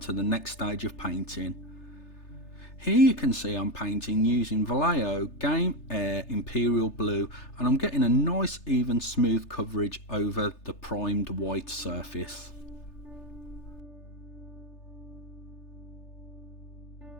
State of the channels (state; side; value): late; right; 3.3 ms